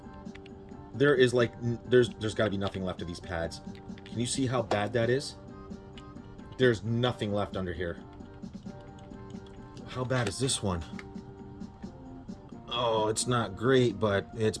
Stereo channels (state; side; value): identical; both; correlation 1.00